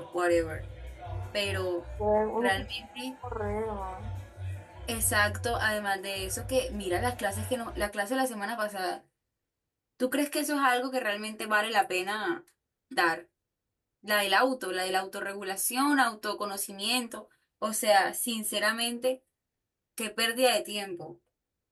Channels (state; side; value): identical; both; correlation 1.00